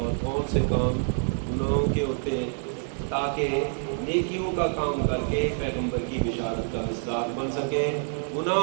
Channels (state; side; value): silent; left; 60 dB below the other